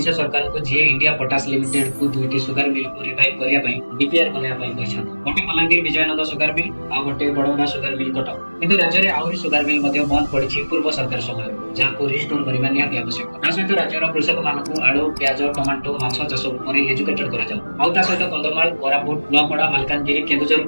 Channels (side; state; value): both; inverted; correlation -1.00